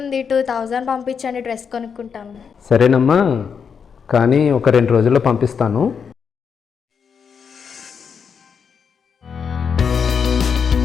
ఉంది, 2000 పంపించండి, డ్రెస్ కొనుక్కుంటాను. సరేనమ్మా, కానీ ఒక 2 రోజుల్లో పంపిస్తాను.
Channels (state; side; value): quieter; right; 6.6 dB